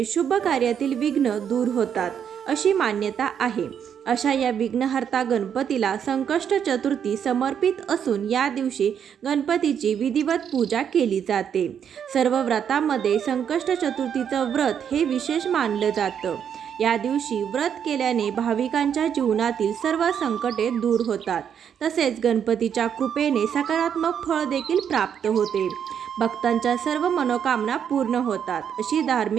शुभ कार्यातील विघ्न दूर होतात अशी मान्यता आहे। अशा या विघ्नहर्ता गणपतीला संकष्ट चतुर्थी समर्पित असून या दिवशी गणपतीची विधिवत पूजा केली जाते। सर्व व्रतांमध्ये संकष्ट चतुर्थीचं व्रत हे विशेष मानलं जातं। या दिवशी व्रत केल्याने भाविकांच्या जीवनातील सर्व संकटे दूर होतात, तसेच गणपतीच्या कृपेने सकारात्मक फळ देखील प्राप्त होते। भक्तांच्या सर्व मनोकामना पूर्ण होतात अशी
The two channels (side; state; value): left; quieter; 8.3 dB